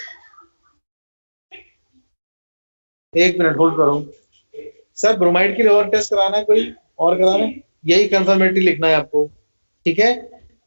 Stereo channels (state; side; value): inverted; both; correlation -1.00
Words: एक मिनट होल्ड करो सर, ब्रोमाइड के लिए और टेस्ट कराना है कोई और कराना है? यही कंफर्मेटरी लिखना है आपको, ठीक है।